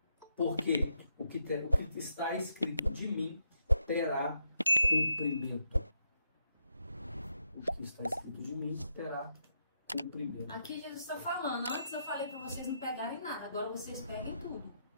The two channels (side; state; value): both; inverted; correlation -0.81